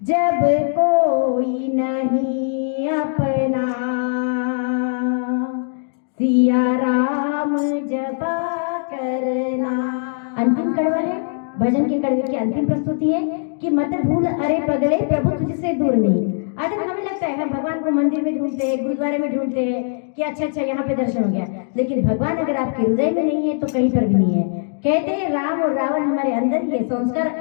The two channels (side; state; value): right; silent; digital silence